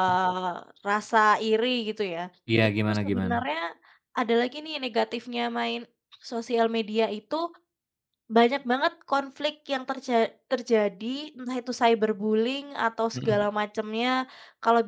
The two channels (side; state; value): both; identical; correlation 1.00